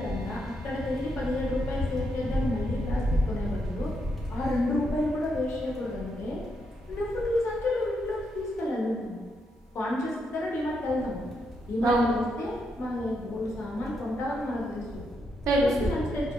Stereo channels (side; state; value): both; normal; correlation 0.80